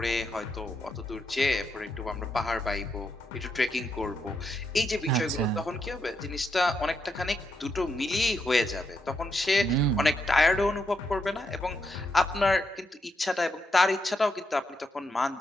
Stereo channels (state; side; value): normal; both; correlation 0.81